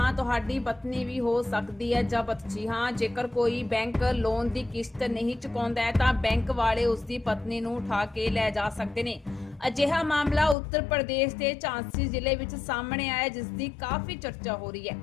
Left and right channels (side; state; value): right; drops out; at 10.6 s